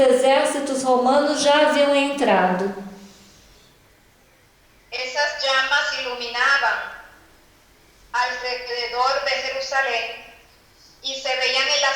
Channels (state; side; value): identical; both; correlation 1.00